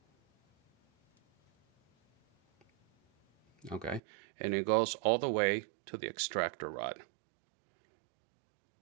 Okay, and it goes all the way to the extractor rod.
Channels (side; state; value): left; drops out; at 4.0 s